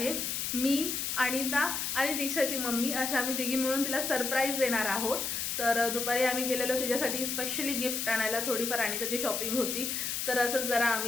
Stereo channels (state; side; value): noise; left; hiss, 2 dB below the sound